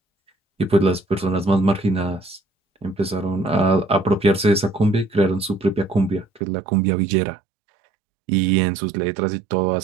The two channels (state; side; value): drops out; left; at 6.4 s